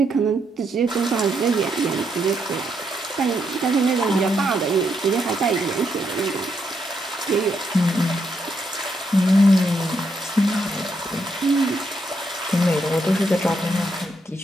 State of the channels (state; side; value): normal; both; correlation 0.78